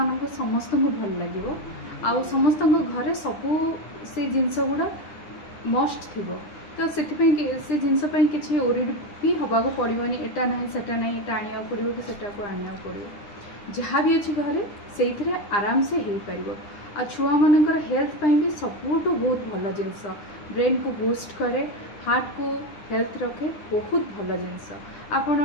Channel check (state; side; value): late; right; 9.9 ms